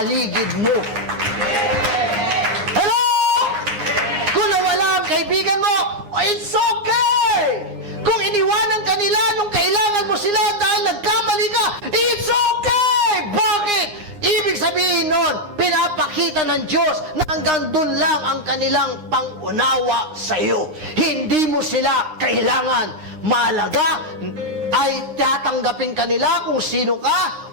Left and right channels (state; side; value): late; left; 9.7 ms